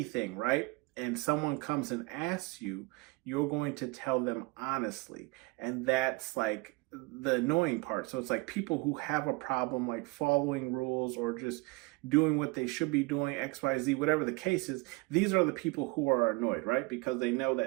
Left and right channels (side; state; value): left; quieter; 25.2 dB